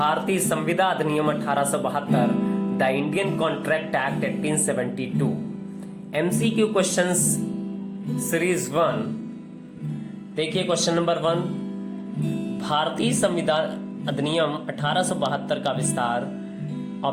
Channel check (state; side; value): identical; both; correlation 1.00